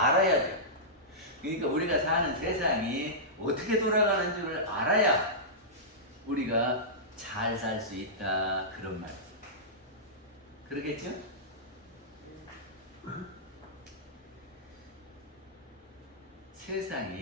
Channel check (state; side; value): normal; both; correlation -0.15